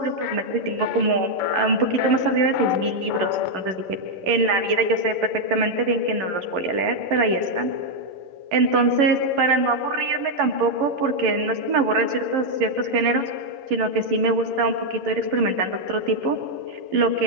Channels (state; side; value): late; left; 11 ms